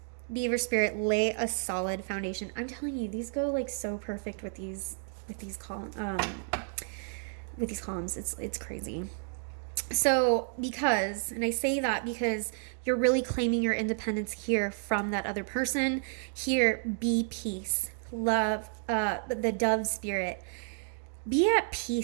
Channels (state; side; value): silent; left; 57 dB below the other